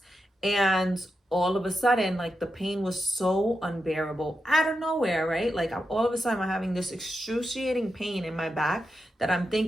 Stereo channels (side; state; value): both; normal; correlation 0.88